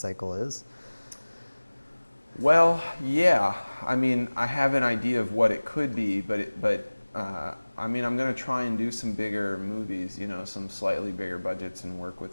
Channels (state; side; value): inverted; both; correlation -1.00